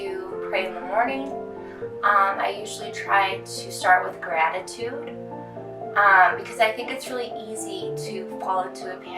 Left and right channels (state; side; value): identical; both; correlation 1.00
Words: pray in the morning. I usually try to start with gratitude because I think it's really easy to fall into a